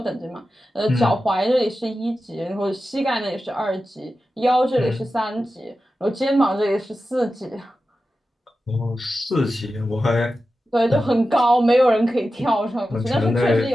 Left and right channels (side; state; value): both; normal; correlation 0.92